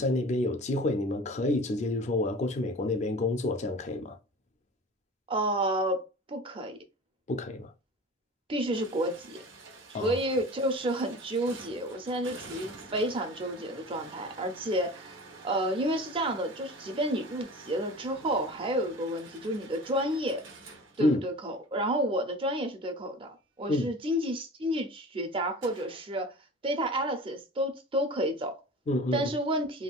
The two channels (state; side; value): normal; both; correlation 0.37